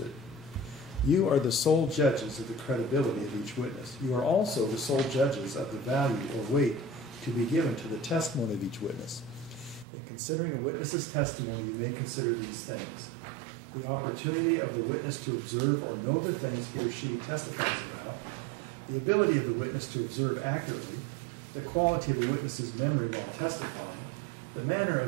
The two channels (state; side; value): drops out; left; at 9.9 s